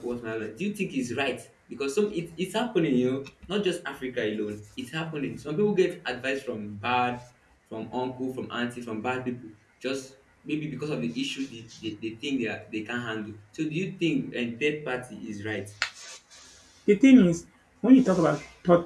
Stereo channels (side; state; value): both; identical; correlation 1.00